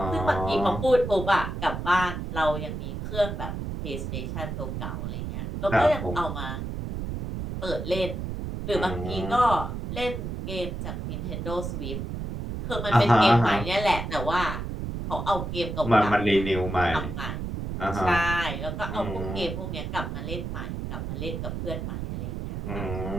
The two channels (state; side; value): noise; right; rumble, 5 dB below the sound